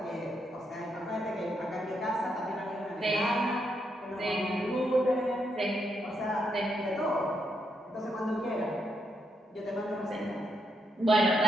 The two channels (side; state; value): both; normal; correlation 0.79